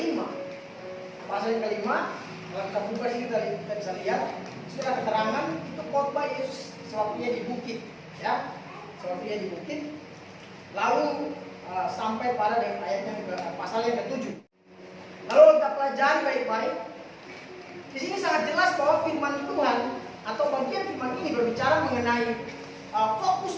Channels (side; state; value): both; identical; correlation 1.00